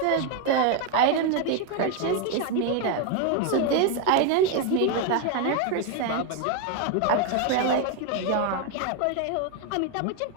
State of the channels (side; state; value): both; different; correlation 0.01